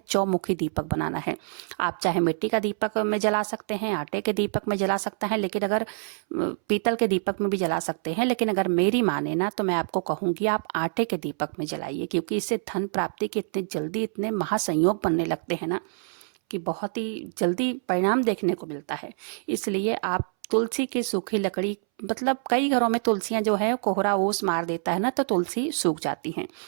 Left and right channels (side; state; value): left; silent; 61 dB below the other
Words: चौमुखी दीपक बनाना है। आप चाहे मिट्टी का दीपक में जला सकते हैं, आटे के दीपक में जला सकते हैं, लेकिन अगर पीतल के दीपक में भी जला सकते हैं, लेकिन अगर मेरी माने ना तो मैं आपको कहूंगी आप आटे के दीपक में जलाइए, क्योंकि इससे धन प्राप्ति के इतने जल्दी इतने महासंयोग बनने लगते हैं ना कि बहुत ही जल्दी परिणाम देखने को मिलता है। इसलिए आप तुलसी की सूखी लकड़ी, मतलब कई घरों में तुलसियां जो है कोहरा ओस मार देता है ना, तो तुलसी सूख जाती हैं।